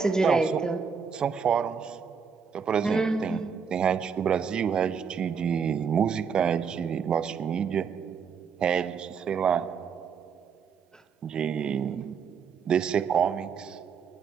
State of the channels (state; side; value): quieter; left; 6.4 dB